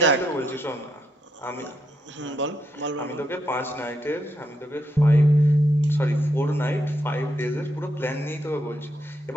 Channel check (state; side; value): normal; both; correlation 0.79